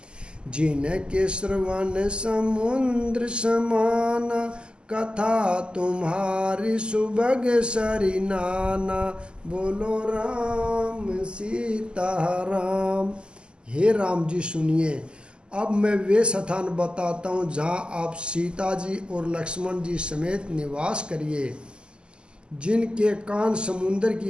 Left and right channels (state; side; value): late; left; 0.049 ms